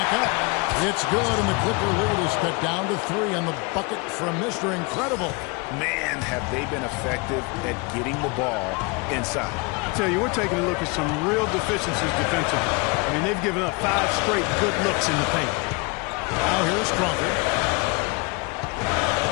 up. It's good, and the Clipper lead is cut down to 3 on the bucket from Mr. Incredible. Man, have they been effective at getting the ball inside. I tell you, we're taking a look at some real deficiencies defensively. I mean, they've given up 5 straight good looks in the paint. Now here's Crawford.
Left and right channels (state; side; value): quieter; right; 28.9 dB